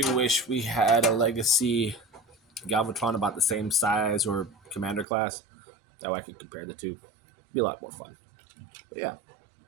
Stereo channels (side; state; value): left; drops out; at 5.1 s